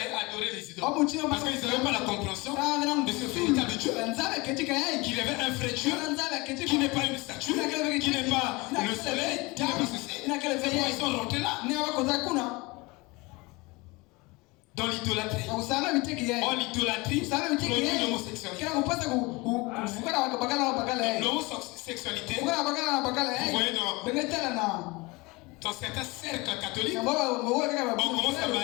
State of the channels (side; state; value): right; quieter; 24.4 dB